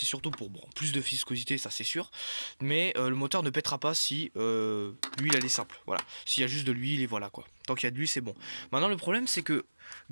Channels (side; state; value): both; inverted; correlation -1.00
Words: surtout pour plus de viscosité, ça c'est sûr. Mais le moteur ne pètera pas si l'huile elle est simple. Voilà. S'il y a juste de l'huile et voilà quoi. Tant qu'il y a de l'huile, c'est bon. Maintenant, le problème c'est que